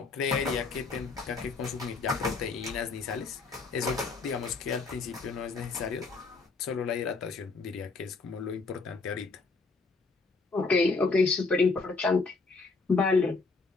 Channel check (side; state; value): right; quieter; 4.1 dB